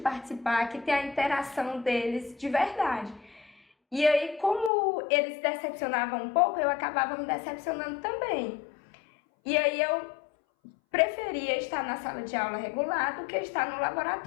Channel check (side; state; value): right; drops out; at 4.7 s